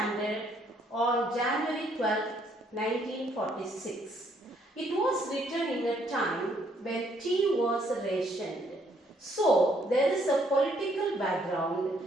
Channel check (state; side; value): normal; both; correlation 0.68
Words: on January 12, 1946. It was written in a time when tea was rationed. So, there is a political background